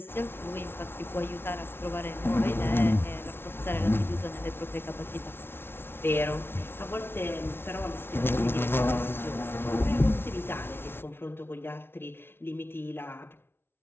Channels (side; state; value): right; late; 0.11 ms